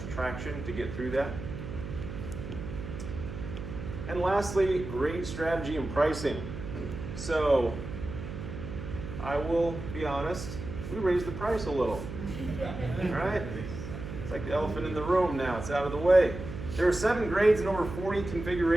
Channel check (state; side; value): noise; right; hum, 8 dB below the sound